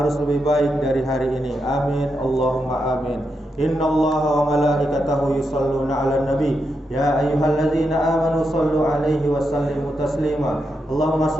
lebih baik dari hari ini. Amin, Allahumma amin. Inna Allaha wa malaikatahu yusalluna ala nabi. Ya ayyuhalladzina amanu sallu alaihi wa sallimu taslima. Allahumma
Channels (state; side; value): normal; both; correlation 0.84